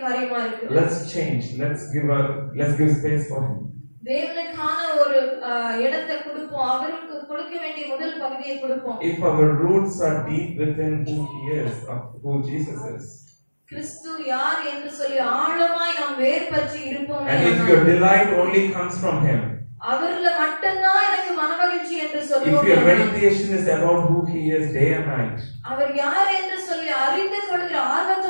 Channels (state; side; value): inverted; both; correlation -1.00